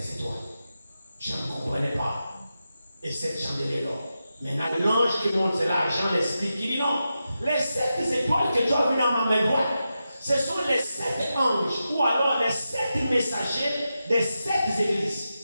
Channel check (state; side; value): inverted; both; correlation -0.90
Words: étoiles. Je ne comprenais pas. Et 7 chandeliers d'or. Maintenant, l'ange qui monte, c'est là, Jean l'explique. Il dit non, les 7 étoiles que tu as vues dans ma main droite, ce sont les 7 anges, ou alors les 7 messagers des 7 églises.